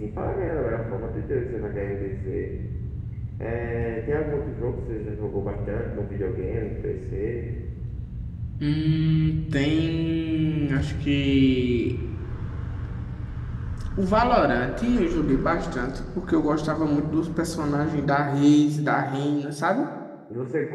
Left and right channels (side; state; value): both; identical; correlation 1.00